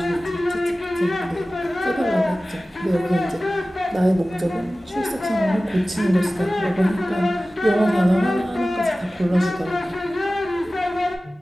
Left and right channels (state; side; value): normal; both; correlation 0.96